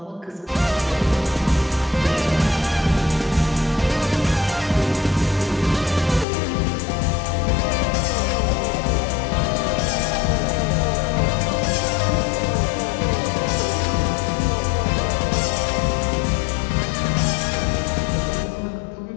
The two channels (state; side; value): drops out; right; at 6.2 s